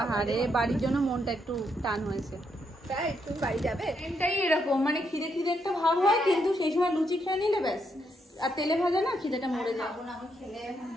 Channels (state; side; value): normal; both; correlation 0.78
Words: আরে বাড়ির জন্য মনটা একটু টান হয়েছে। তাই তুমি বাড়ি যাবে? এটাই এরকম, মানে খিদে খিদে একটা ভাব হয়, কিন্তু সেই সময় লুচি খেয়ে নিলে ব্যাস, আর তেলে ভাজা না খিদেটা মরে যায়।